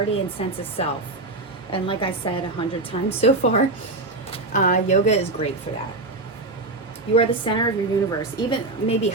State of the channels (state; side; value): quieter; left; 3.1 dB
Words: and sense of self. And like I said 100 times so far, yoga is great for that. You are the center of your universe. Even maybe